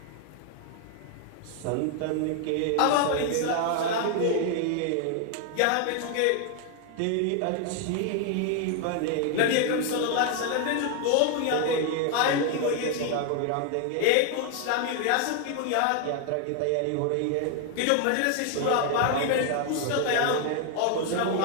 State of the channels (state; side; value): different; both; correlation 0.00